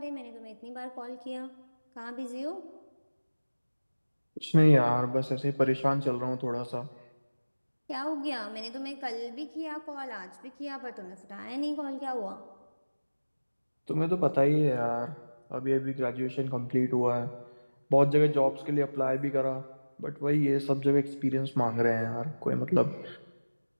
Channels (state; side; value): inverted; both; correlation -1.00